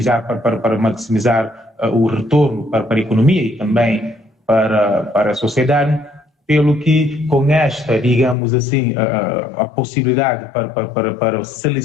para maximizar o retorno para a economia e também para a sociedade, pelo que com esta, digamos assim, a possibilidade para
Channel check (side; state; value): right; drops out; at 8.3 s